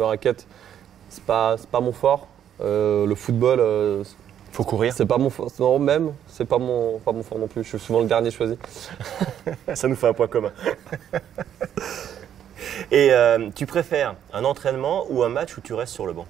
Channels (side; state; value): left; quieter; 9.8 dB